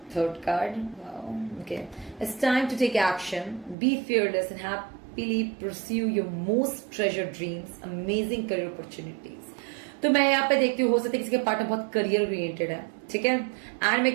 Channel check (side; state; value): left; drops out; at 3.8 s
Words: third card, okay, it's time to take action, be fearless and happily pursue your most treasured dreams, amazing career opportunities. तो मैं यहाँ पे देखती हूँ हो सकता है किसी के पार्टनर बहुत करियर ओरिएंटेड है, ठीक है। एंड